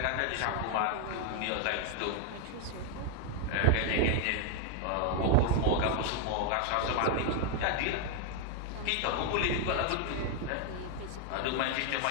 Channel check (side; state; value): both; different; correlation 0.01